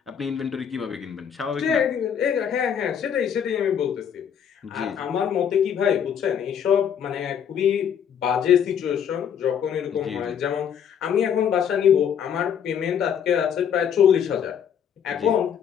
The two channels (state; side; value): quieter; right; 8.3 dB